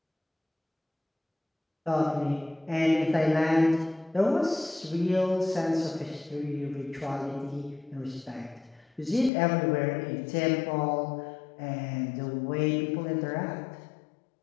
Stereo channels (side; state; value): right; drops out; at 9.3 s